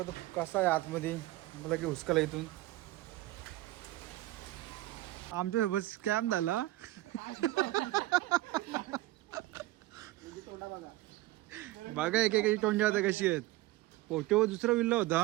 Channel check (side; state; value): left; quieter; 17.5 dB